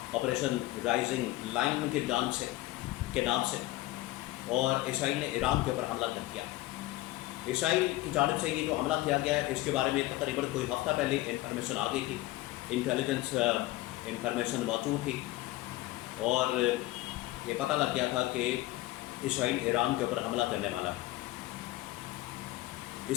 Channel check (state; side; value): quieter; right; 17.5 dB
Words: آپریشن رائزنگ لائن کی جانب سے کے نام سے، اور اسرائیل نے ایران کے اوپر حملہ کر دیا۔ اسرائیل کی جانب سے یہ جو حملہ کیا گیا ہے اس کے بارے میں تقریباً کوئی ہفتہ پہلے انفارمیشن آ گئی تھی، انٹیلیجنس انفارمیشن موجود تھی، اور یہ پتہ لگ گیا تھا کہ اسرائیل ایران کے اوپر حملہ کرنے والا ہے۔